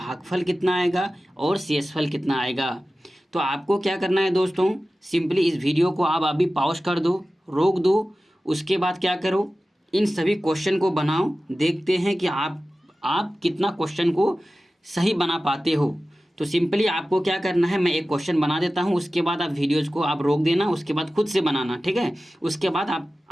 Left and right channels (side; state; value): both; normal; correlation 0.95